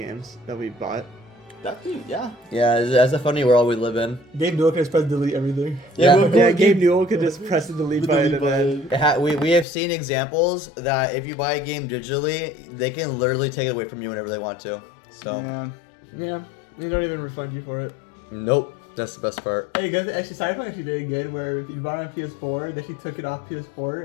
that we bought? Yeah. Yeah, that's a funny world we live in. Gabe Newell can just press delete everything. Yeah, Gabe Newell could just press the delete button and then. We have seen examples that if you buy a game digitally, they can literally take it away from you whenever they want to. So, Yeah, they don't even refund you for it. nope, that's the best part. Hey guys, actually Cyberpunk actually did good where if you bought it on PS4, they actually took it off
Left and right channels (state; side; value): drops out; right; at 9.7 s